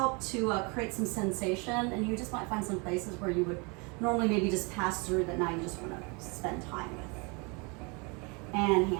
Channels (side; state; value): left; quieter; 30.9 dB